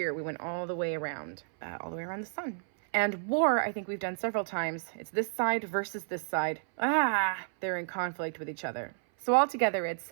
We went all the way around the sun. And war, I think we've done several times. It's this side versus this side. They're in conflict with each other. So altogether,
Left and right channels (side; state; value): left; silent; 57 dB below the other